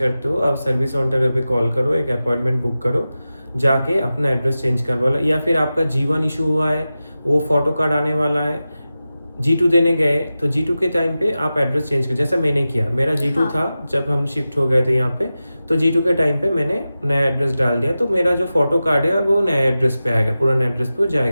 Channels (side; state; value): both; inverted; correlation -0.94